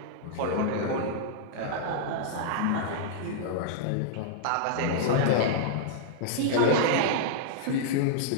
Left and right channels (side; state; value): both; different; correlation -0.02